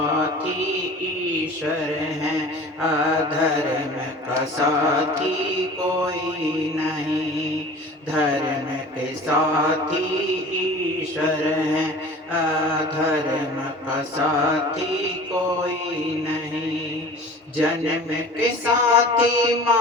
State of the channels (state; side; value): normal; both; correlation 0.41